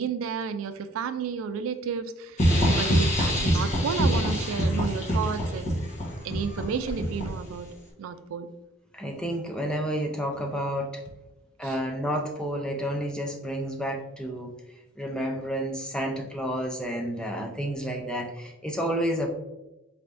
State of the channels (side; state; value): both; normal; correlation 0.60